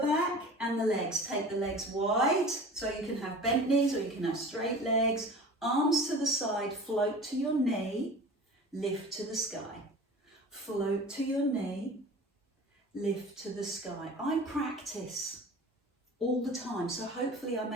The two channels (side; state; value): both; normal; correlation 0.39